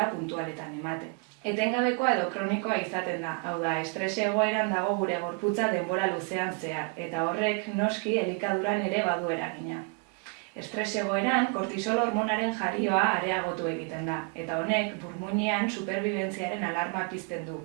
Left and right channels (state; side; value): quieter; left; 34.6 dB